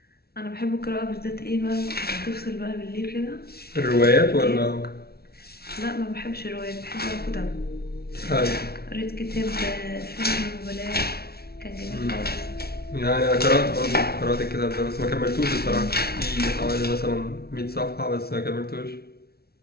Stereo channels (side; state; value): right; late; 0.45 ms